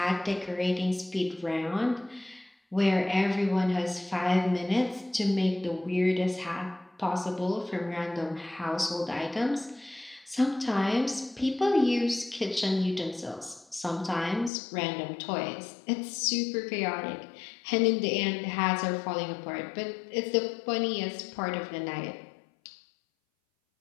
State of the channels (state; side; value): drops out; right; at 14.5 s